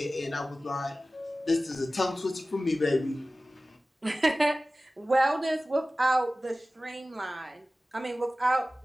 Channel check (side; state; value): both; normal; correlation 0.96